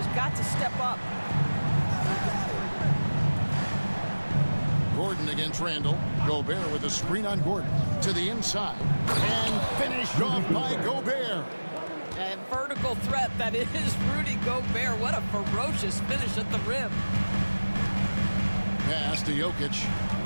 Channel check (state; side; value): inverted; both; correlation -1.00